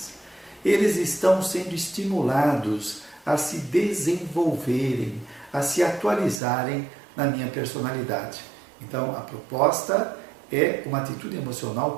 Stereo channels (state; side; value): drops out; left; at 6.4 s